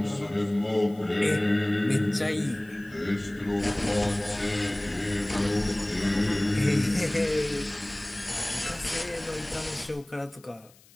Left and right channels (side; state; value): left; noise; hiss, 27 dB below the sound